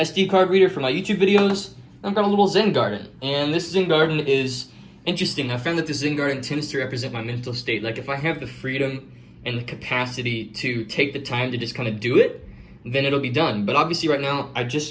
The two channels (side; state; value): both; identical; correlation 1.00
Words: card reader for my YouTube videos. I've got a little Zen Garden, and this Zen Garden is interesting. I found that the Zen Garden tends to represent my mental state. Like, if I have the freedom and the capacity to take the time to just kind of do it, then it'll be done. But obviously right now, I